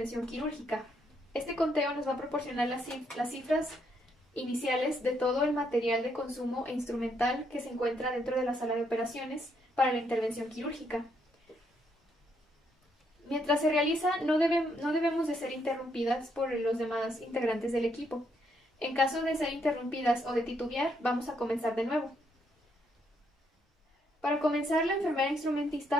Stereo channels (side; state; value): both; normal; correlation 0.75